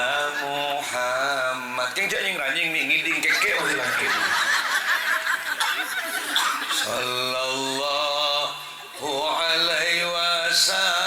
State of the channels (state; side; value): identical; both; correlation 1.00